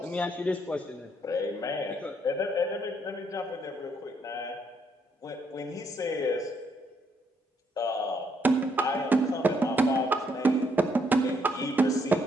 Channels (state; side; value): normal; both; correlation 0.73